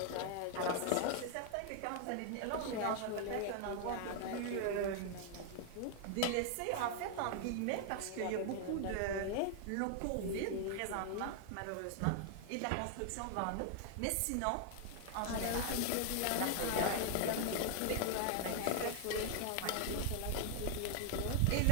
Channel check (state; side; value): different; both; correlation 0.00